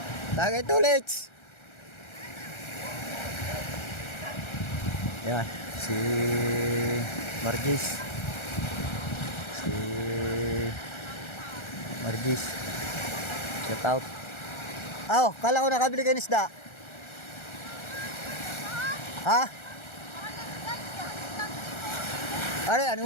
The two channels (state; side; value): late; right; 1.3 ms